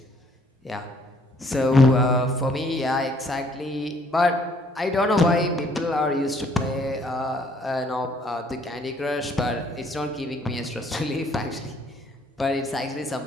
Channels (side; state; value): both; normal; correlation 0.63